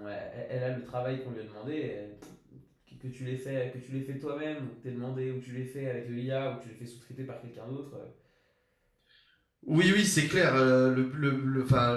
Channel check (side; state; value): both; identical; correlation 1.00